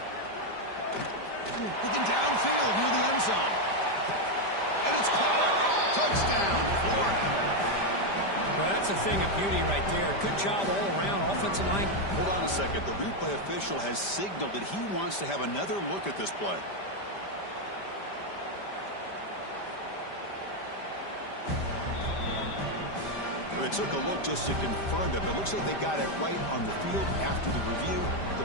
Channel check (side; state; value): right; late; 5.1 ms